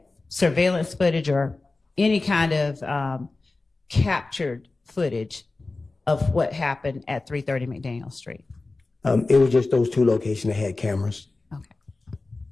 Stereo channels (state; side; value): quieter; right; 3.4 dB